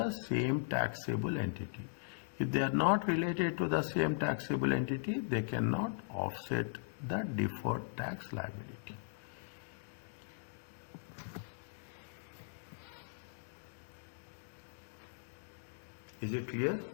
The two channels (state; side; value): silent; right; digital silence